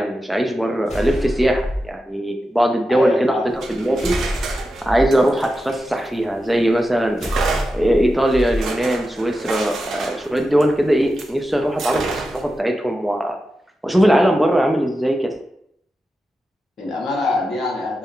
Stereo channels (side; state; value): both; normal; correlation 0.90